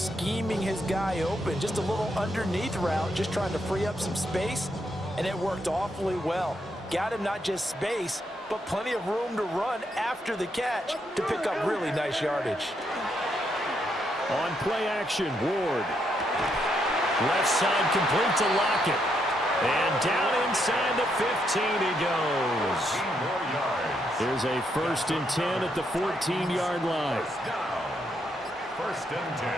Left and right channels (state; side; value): normal; both; correlation 0.78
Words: his guy open. Just a little underneath route, just trying to free up some space, and it worked awfully well. Got him not just space, but plenty of room to run after the catch to pick up really nice yardage. On play action, Ward. Left side complete to Lockett. And down inside the 15 he goes. Here's a first and 10 at the 14-yard line. First and